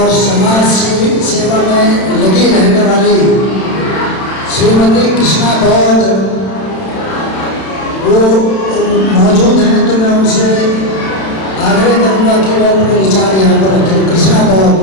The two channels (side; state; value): right; late; 31 ms